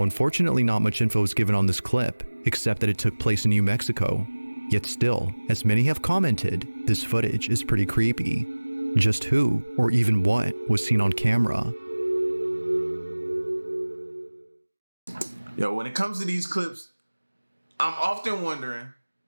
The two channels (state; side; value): inverted; both; correlation -1.00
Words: unfortunately not much info is given on this clip, except that it took place in New Mexico. Yet still, as many have commented, this footage is pretty creepy. Just who, or even what, was seen on camera? Yo, when it comes to these clips, I'm often wondering,